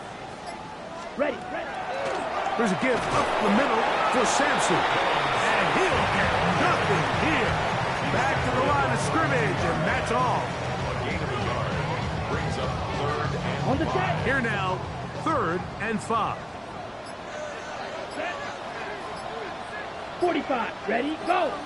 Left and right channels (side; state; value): both; identical; correlation 1.00